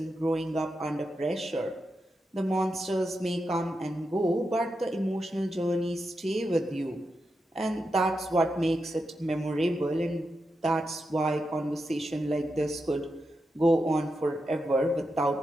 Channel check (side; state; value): both; normal; correlation 0.87